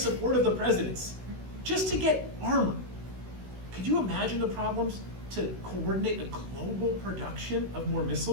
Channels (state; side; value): late; left; 16 ms